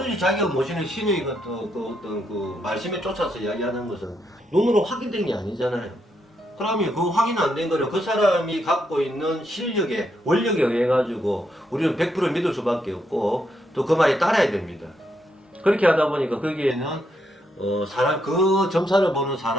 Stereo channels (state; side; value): normal; both; correlation 0.79